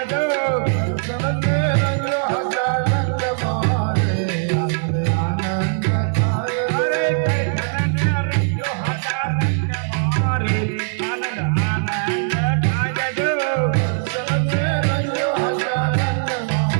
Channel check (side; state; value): left; silent; 65 dB below the other